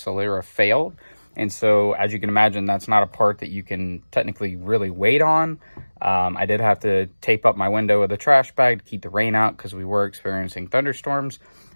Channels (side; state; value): both; inverted; correlation -1.00